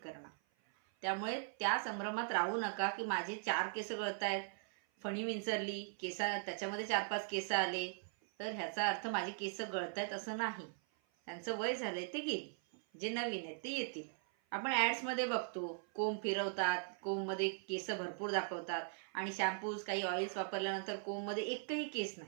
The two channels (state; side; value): silent; left; 51 dB below the other